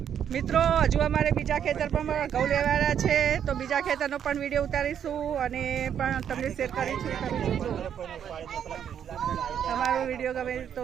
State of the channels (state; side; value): quieter; left; 8.9 dB